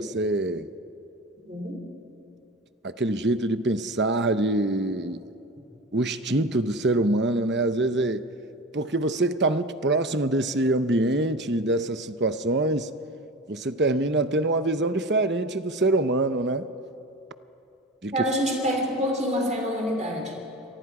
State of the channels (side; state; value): both; normal; correlation 0.31